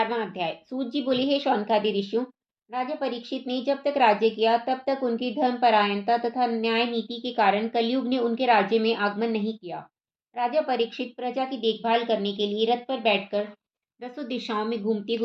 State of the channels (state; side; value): identical; both; correlation 1.00